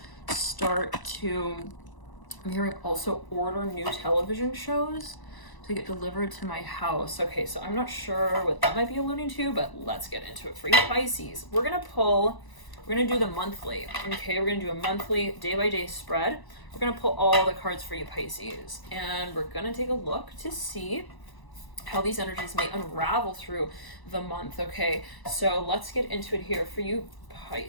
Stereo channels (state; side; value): late; right; 1.0 ms